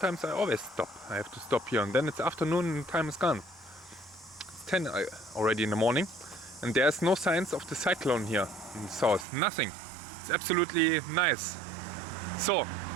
I always stop. I have to stop here, and then it's afternoon and time is gone. It's 10 already in the morning, and there's no signs of the cyclone here in the south. Nothing. It's absolutely nice. So,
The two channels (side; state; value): left; drops out; at 9.2 s